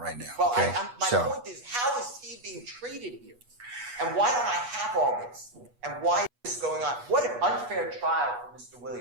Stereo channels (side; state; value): left; late; 8.3 ms